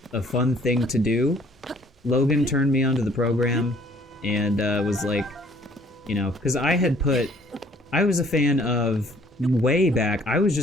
fun thing to do. Logan turned me onto the program and was like, you know, because I was a fan of, way back, I was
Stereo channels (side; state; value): both; normal; correlation 0.58